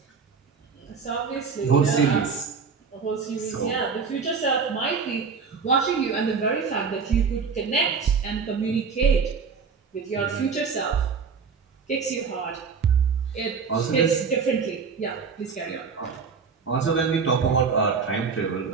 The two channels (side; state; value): left; quieter; 5.5 dB